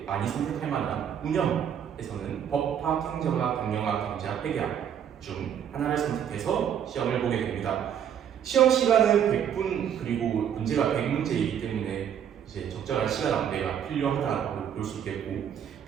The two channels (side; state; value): left; quieter; 8.9 dB